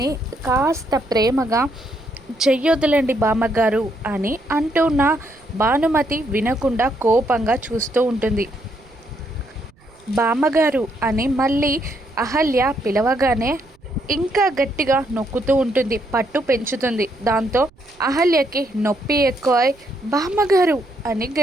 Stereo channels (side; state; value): right; noise; rumble, 29 dB below the sound